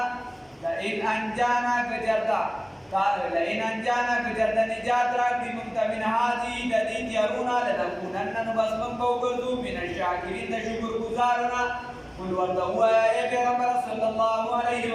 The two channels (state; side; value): identical; both; correlation 1.00